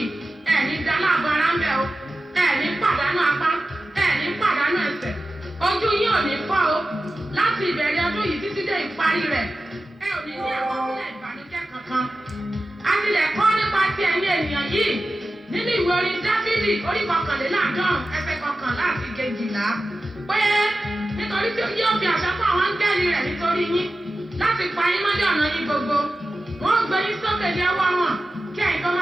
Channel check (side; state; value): both; normal; correlation 0.94